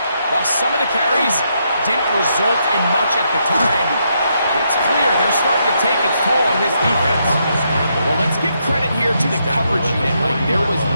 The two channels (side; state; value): both; inverted; correlation -0.78